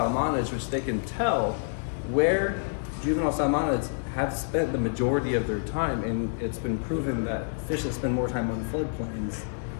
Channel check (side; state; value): right; silent; 59 dB below the other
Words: which they can tell where juvenile salmonids have spent the majority of their time, and it's been proven that fish that spend more time on floodplains